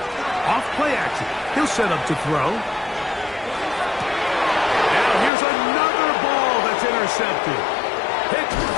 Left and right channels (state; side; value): drops out; right; at 5.3 s